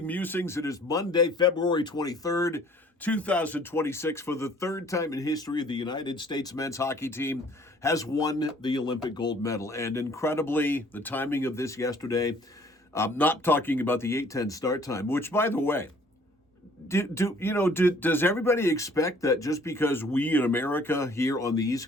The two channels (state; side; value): normal; both; correlation 0.56